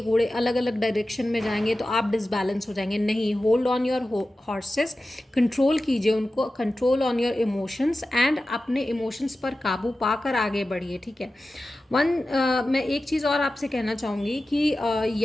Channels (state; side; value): normal; both; correlation 0.94